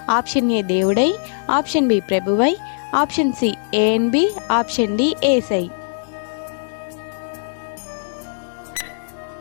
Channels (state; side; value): silent; right; digital silence